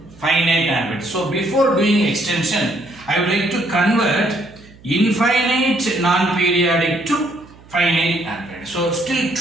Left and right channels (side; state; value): right; noise; hum, 24 dB below the sound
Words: finite non-periodic. So before doing extension, I would like to convert infinite non-periodic to finite non-periodic. So still